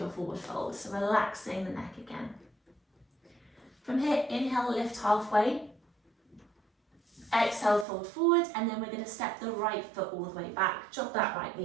forward fold. So relaxing the neck again. From here, inhale, lift halfway. Exhale, fold forward. And then we're going to step the right foot all the way back. Drop that right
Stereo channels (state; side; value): drops out; left; at 7.9 s